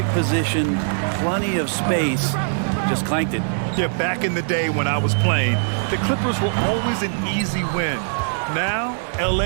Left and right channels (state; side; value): silent; left; 65 dB below the other